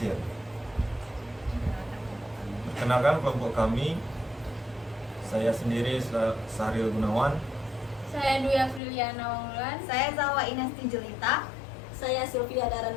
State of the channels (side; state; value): right; drops out; at 8.8 s